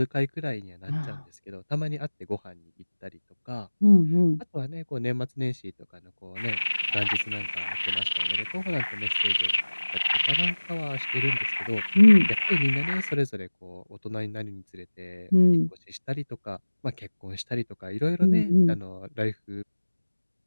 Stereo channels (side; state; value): both; inverted; correlation -1.00